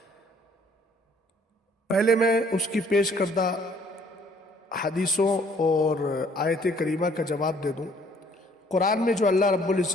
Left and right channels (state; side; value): normal; both; correlation 0.61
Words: پہلے میں اس کی پیش کردہ حدیثوں اور آیت کریمہ کا جواب دے دوں۔ قرآن میں جو اللہ رب